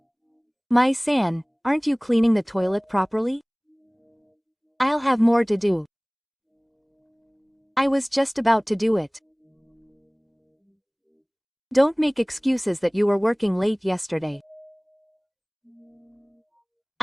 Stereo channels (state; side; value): identical; both; correlation 1.00